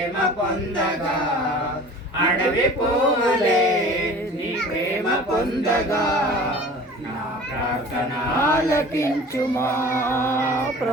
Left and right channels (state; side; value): normal; both; correlation 0.43